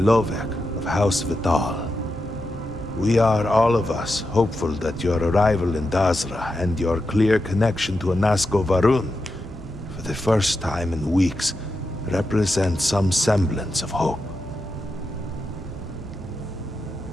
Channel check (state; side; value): normal; both; correlation 0.88